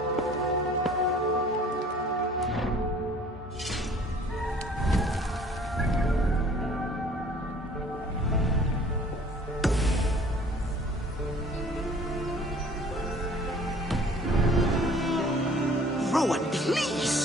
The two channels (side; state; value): both; normal; correlation 0.52